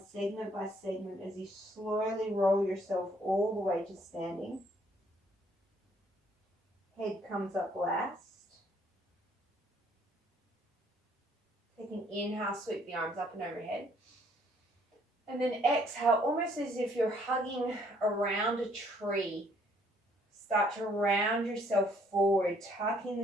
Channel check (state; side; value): normal; both; correlation 0.65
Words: segment by segment as you slowly roll yourself all the way to standing. Head comes up last. Take an inhale, sweep the arms up and overhead. And then exhale, almost as if you're hugging around a tree. Start to round yourself forward, tucking